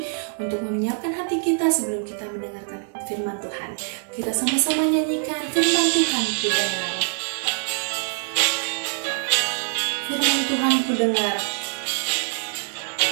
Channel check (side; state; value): left; silent; digital silence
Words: untuk menyiapkan hati kita sebelum kita mendengarkan firman Tuhan. Kita sama-sama nyanyikan firman Tuhan ku dengar. Firman Tuhan ku dengar.